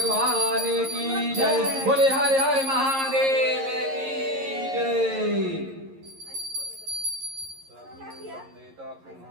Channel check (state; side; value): late; left; 11 ms